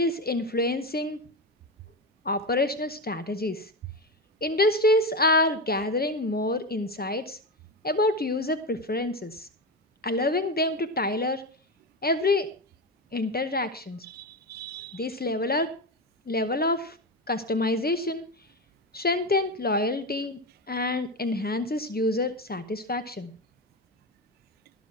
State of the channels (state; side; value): normal; both; correlation 0.18